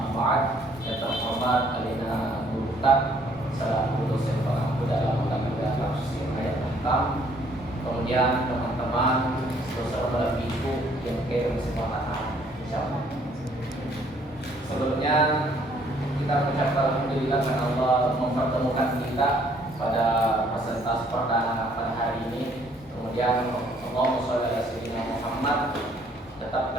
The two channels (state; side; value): normal; both; correlation 0.63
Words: ba'd. Yang terhormat Alina Guru Ustaz selaku dosen pengampu dalam lembaga tafsir ayat 6. Kemudian teman-teman saudara ibu yang kirim kesempatan, insyaallah. Sebelumnya kita mengucapkan alhamdulillah karena Allah mempertemukan kita pada presentasi perdana pada hari ini. Kemudian Allahumma sholli ala sayyidina Muhammad tetap